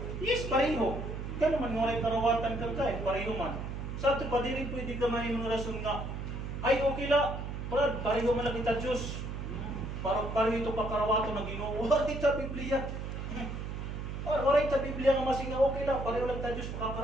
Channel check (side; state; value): right; noise; hum, 6 dB below the sound